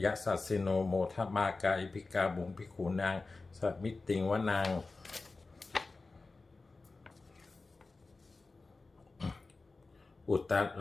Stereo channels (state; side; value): quieter; right; 3.7 dB